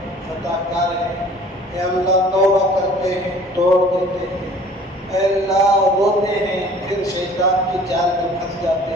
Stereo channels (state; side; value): normal; both; correlation 0.50